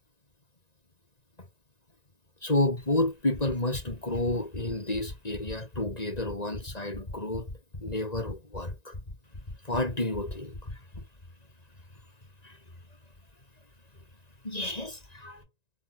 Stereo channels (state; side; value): late; right; 1.9 ms